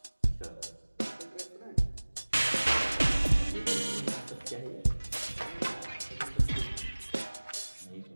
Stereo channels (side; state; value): both; inverted; correlation -1.00